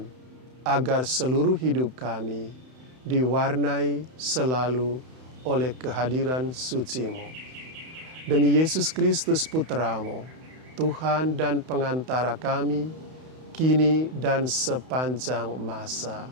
agar seluruh hidup kami diwarnai selalu oleh kehadiran suci-Mu. Demi Yesus Kristus Putra-Mu, Tuhan dan pengantara kami, kini dan sepanjang masa.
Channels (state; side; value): late; left; 31 ms